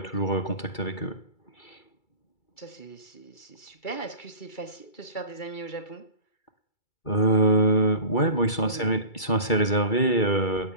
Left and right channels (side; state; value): right; late; 2.3 ms